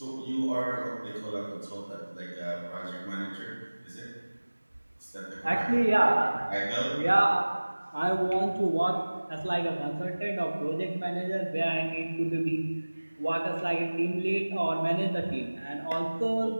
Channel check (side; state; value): both; inverted; correlation -1.00